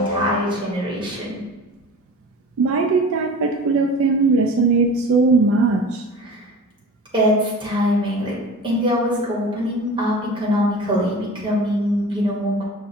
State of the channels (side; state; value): both; normal; correlation 0.37